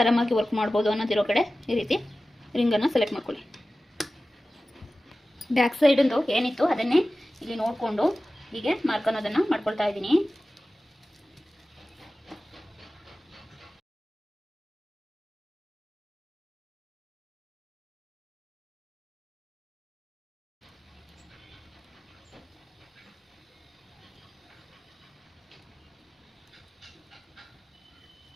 ವರ್ಕ್ ಮಾಡ್ಬೋದು ಅನ್ನೋದಿರೋ ಕಡೆ ಈ ರೀತಿ ರಿಂಗನ್ನು ಸೆಲೆಕ್ಟ್ ಮಾಡ್ಕೊಳ್ಳಿ. ಬ್ಯಾಕ್ ಸೈಡಿಂದು ಏನಿತ್ತು ಅದನ್ನೇ ಇಲ್ಲಿ ನೋಡಿಕೊಂಡು ಹೀಗೆ ಮಾರ್ಕ್ ಅನ್ನೋದನ್ನು ಮಾಡ್ಕೊಳ್ತಾ ಇದ್ದೀನಿ.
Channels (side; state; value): both; normal; correlation 0.96